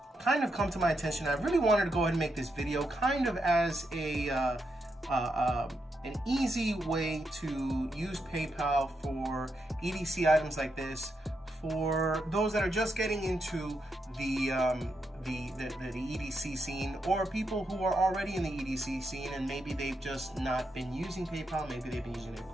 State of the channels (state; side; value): normal; both; correlation 0.82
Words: kind of come to my attention. I really wanted to go ahead and make this video kind of as an easy way to use PayPal for EDC items like this, for those that are just getting into the EDC scene, or people who are already in the EDC scene and maybe they've just not been using PayPal, maybe they've been using their